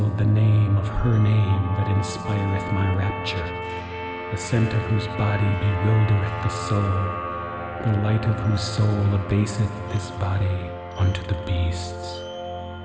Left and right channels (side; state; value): both; identical; correlation 1.00